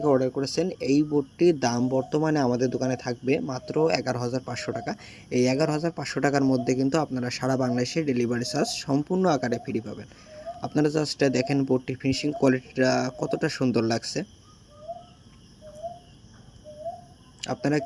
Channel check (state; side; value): identical; both; correlation 1.00